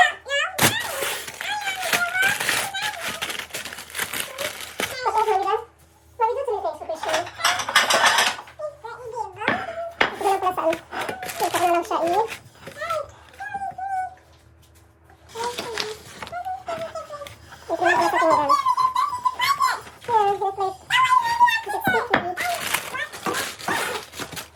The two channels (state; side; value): identical; both; correlation 1.00